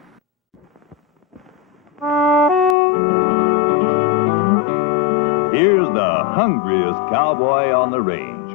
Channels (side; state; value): right; drops out; at 2.8 s